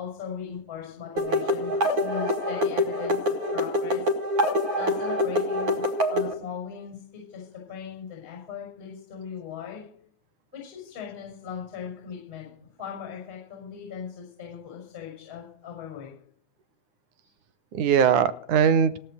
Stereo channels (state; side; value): late; left; 9.6 ms